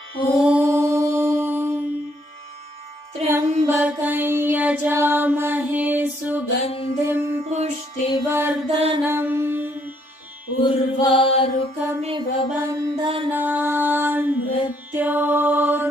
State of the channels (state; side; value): late; left; 3.5 ms